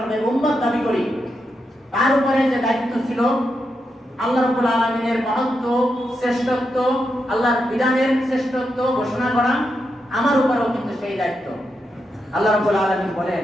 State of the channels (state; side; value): normal; both; correlation 0.85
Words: উম্মত দাবি করি, তার উপরে যে দায়িত্ব ছিল আল্লাহ রাব্বুল আলামিনের মহত্ব শ্রেষ্ঠত্ব, আল্লাহর বিধানের শ্রেষ্ঠত্ব ঘোষণা করা, আমার উপরেও কিন্তু সেই দায়িত্ব। আল্লাহ রাব্বুল আলামিন বলেন,